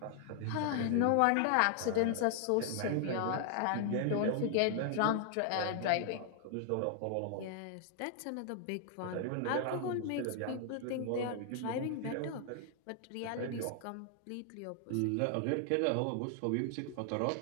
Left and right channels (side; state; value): both; different; correlation 0.00